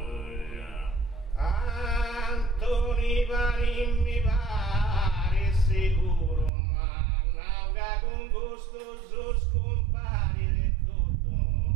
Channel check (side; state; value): left; drops out; at 6.5 s